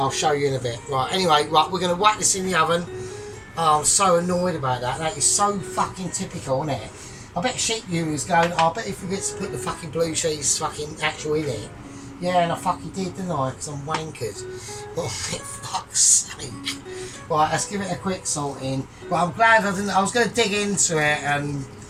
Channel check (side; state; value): both; identical; correlation 1.00